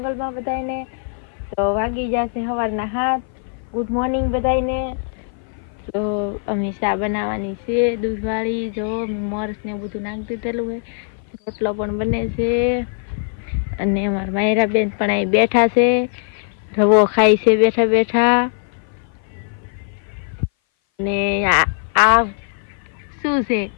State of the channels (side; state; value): right; silent; 59 dB below the other